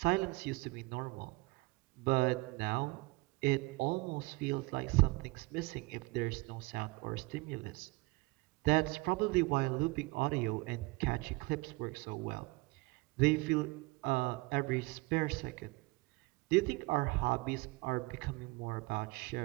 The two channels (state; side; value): quieter; left; 25.2 dB